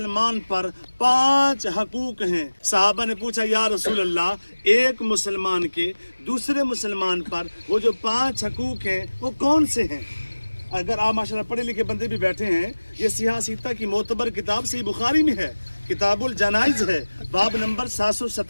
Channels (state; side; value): inverted; both; correlation -1.00